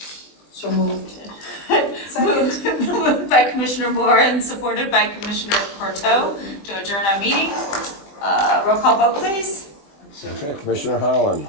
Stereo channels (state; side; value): late; right; 20 ms